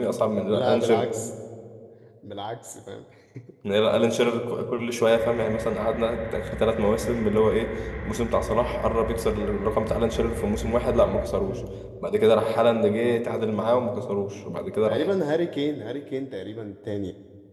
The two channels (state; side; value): identical; both; correlation 1.00